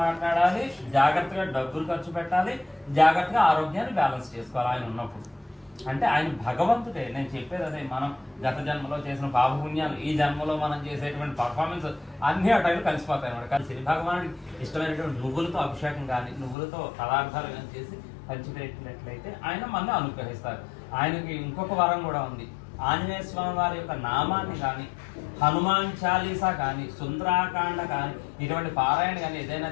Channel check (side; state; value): right; drops out; at 16.6 s